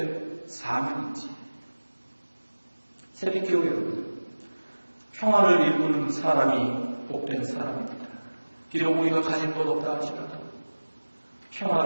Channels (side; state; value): both; inverted; correlation -1.00